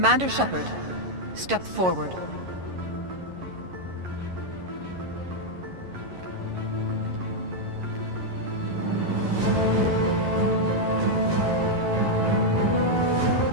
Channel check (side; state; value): left; late; 11 ms